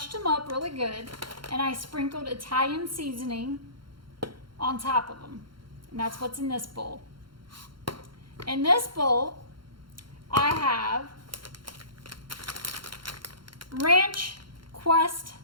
them up really good, and I sprinkled Italian seasoning on top of them. And that's what's in this bowl. In this bowl, I have Ranch Quest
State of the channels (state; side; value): late; left; 0.73 ms